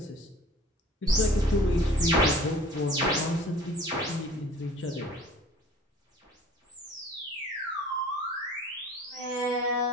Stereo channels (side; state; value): both; normal; correlation 0.48